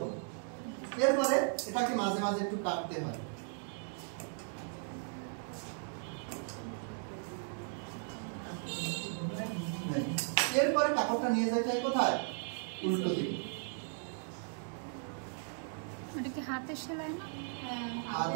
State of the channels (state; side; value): silent; left; 53 dB below the other